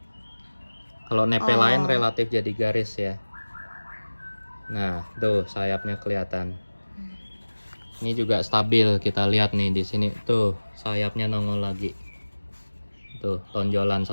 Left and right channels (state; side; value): inverted; both; correlation -1.00